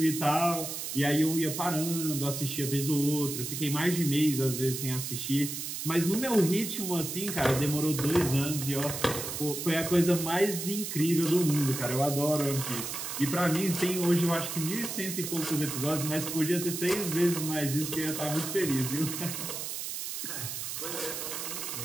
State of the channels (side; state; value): right; noise; hiss, 5 dB below the sound